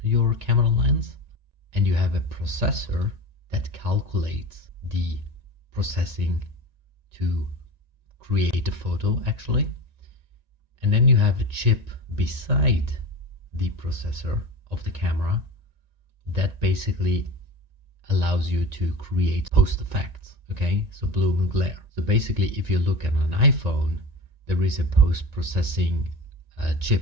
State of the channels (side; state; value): left; late; 1.9 ms